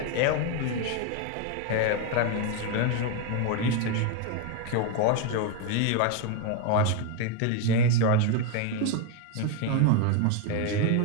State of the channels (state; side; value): different; both; correlation 0.01